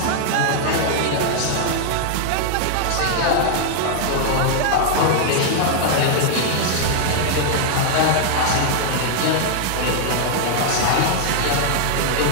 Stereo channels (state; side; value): different; both; correlation -0.01